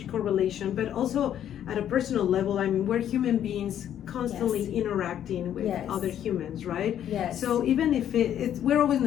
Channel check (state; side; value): quieter; right; 10.4 dB